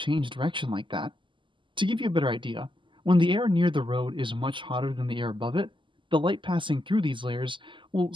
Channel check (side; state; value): left; late; 0.24 ms